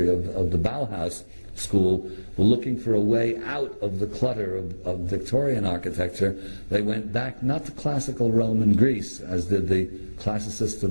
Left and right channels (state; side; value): inverted; both; correlation -1.00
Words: of the Bauhaus school were looking for a way out of the clutter of Victorian architecture, they went back not to classical Rome and Greece, as did the classicists